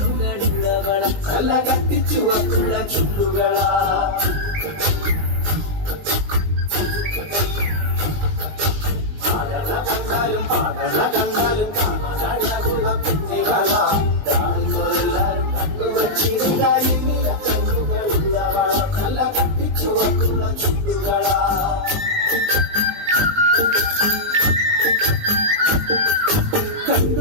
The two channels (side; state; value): left; late; 20 ms